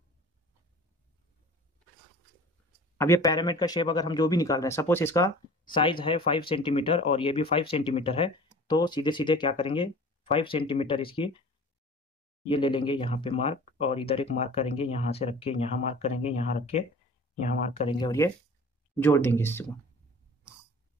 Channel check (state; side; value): normal; both; correlation 0.43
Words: अब ये पैरामिड का शेप अगर हम जो भी निकाल रहे हैं, सपोज इसका साइज है 5 सेंटीमीटर और ये भी 5 सेंटीमीटर है, तो सीधे सीधे क्या करेंगे, 5 सेंटीमीटर इसकी ये ले लेंगे यहाँ पे मार्क, और इधर एक मार्क करेंगे, यहाँ से रख के यहाँ मार्क करेंगे, यहाँ रख के यहाँ मार्क करेंगे, और ये जोड़ देंगे इसको।